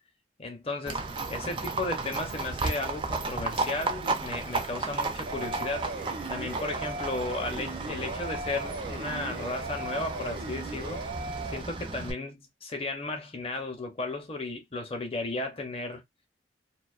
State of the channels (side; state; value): both; normal; correlation 0.13